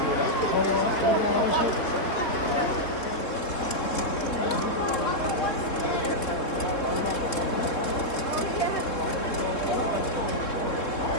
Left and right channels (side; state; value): right; late; 3.6 ms